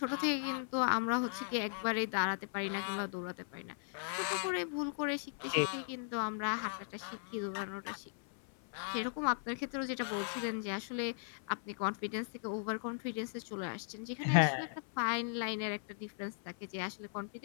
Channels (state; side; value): silent; right; 53 dB below the other